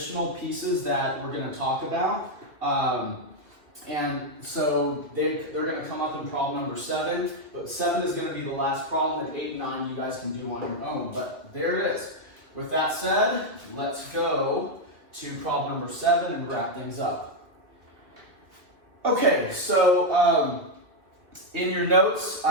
pieces that we're going to talk about. And so they're going to come up in problem number 7, but 7 is going to be the last problem, and 8 and 9 you guys can do on your own. But there it is. With that said, let's go to problem number 7 and wrap things up. Okay, so in your notes,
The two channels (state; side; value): late; left; 2.1 ms